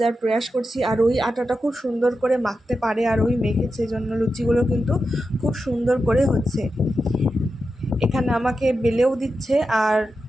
প্রয়াস করছি। আর ওই আটাটা খুব সুন্দর করে মাখতে পারে, আর ওই মেখেছে জন্য লুচিগুলো কিন্তু খুব সুন্দর করে হচ্ছে। এখানে আমাকে বেলেও দিচ্ছে, আর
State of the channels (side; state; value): both; normal; correlation 0.90